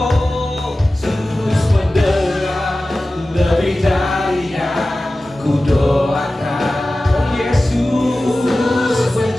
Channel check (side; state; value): both; normal; correlation 0.96